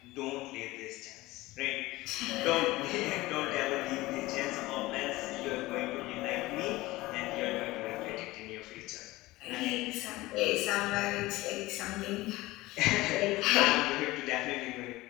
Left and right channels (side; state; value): right; quieter; 19.3 dB